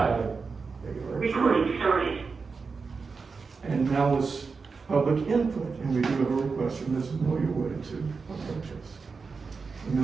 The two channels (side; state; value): left; quieter; 4.8 dB